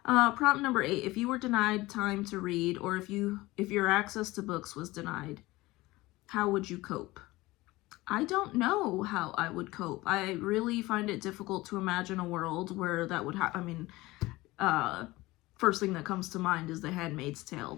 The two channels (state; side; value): quieter; right; 19.8 dB